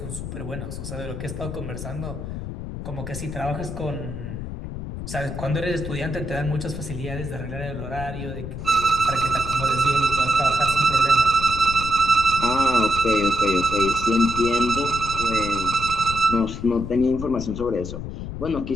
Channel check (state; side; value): noise; left; rumble, 7 dB below the sound